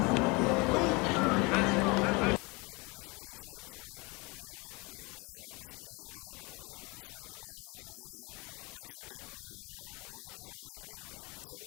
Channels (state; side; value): quieter; right; 27.1 dB